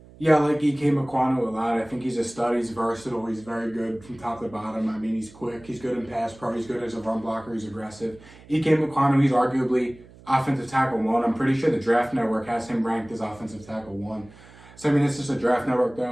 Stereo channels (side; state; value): right; noise; hum, 22 dB below the sound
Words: Yeah, I like Ike Mekwonu a lot. I think he's a stud. He's versatile. He's very good from top to bottom. I mean, he's quick. He's good in pass pro. He's good as a run blocker. He's aggressive. Ike Mekwonu, he's arguably offensive tackle 1. I'm pretty sure the Draft Network has him ranked as offensive tackle 1. So, I mean, it's just a Draft Network,